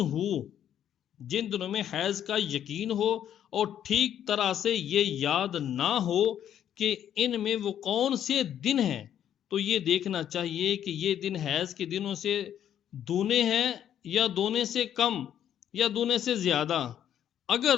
ہو، جن دنوں میں حیض کا یقین ہو اور ٹھیک طرح سے یہ یاد نہ ہو کہ ان میں وہ کون سے دن ہیں، تو یہ دیکھنا چاہیے کہ یہ دن حیض کے دنوں سے دونے ہیں یا دونے سے کم یا دونے سے زیادہ۔ اگر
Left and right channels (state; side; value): quieter; right; 10.1 dB